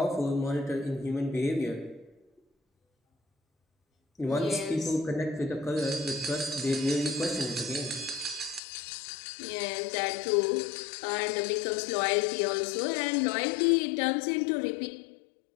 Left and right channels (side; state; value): right; drops out; at 8.6 s